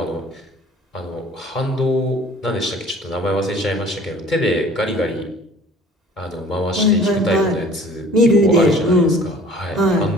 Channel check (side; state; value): both; normal; correlation 0.50